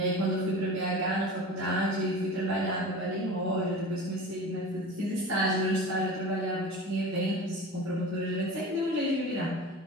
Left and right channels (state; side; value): normal; both; correlation 0.34